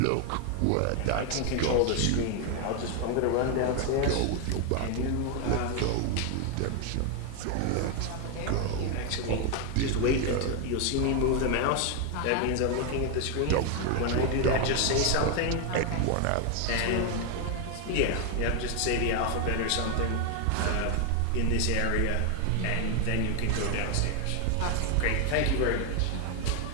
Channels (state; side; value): different; both; correlation 0.01